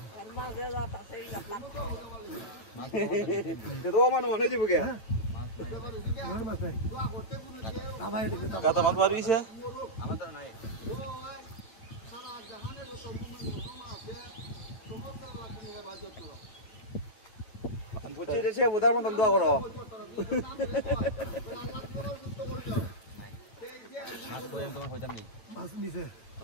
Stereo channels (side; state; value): right; late; 8.9 ms